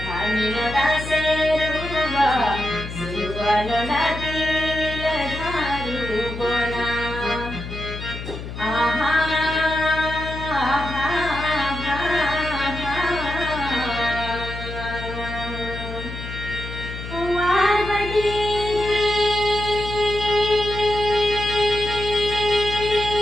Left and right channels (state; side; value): noise; left; hum, 9 dB below the sound